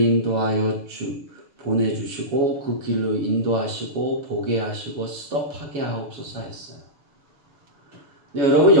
보내주시고 그 길로 인도하시고 보게 하시고 스톱하게 하옵소서 했어요. 근데 여러분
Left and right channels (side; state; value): left; late; 7.1 ms